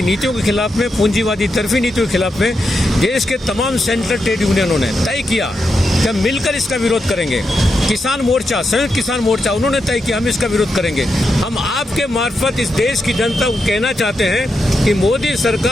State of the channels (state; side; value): normal; both; correlation 0.85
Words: नीतियों के खिलाफ में, पूंजीवादी तरफी नीतियों के खिलाफ में देश के तमाम सेंट्रल ट्रेड यूनियनों ने तय किया कि हम मिलकर इसका विरोध करेंगे। किसान मोर्चा, संयुक्त किसान मोर्चा, उन्होंने तय किया हम इसका विरोध करेंगे। हम आपके मार्फत इस देश की जनता को कहना चाहते हैं कि मोदी